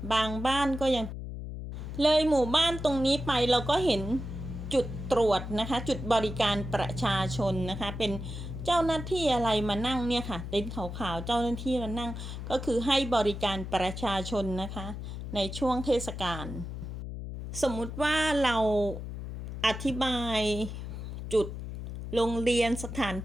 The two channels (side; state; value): left; noise; hum, 7 dB below the sound